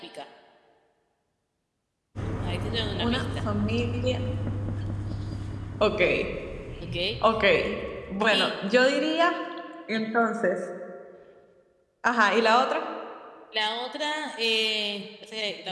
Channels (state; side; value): identical; both; correlation 1.00